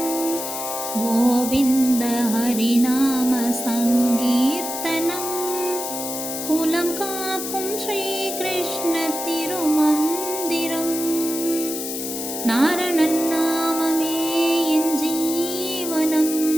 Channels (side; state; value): left; noise; hiss, 6 dB below the sound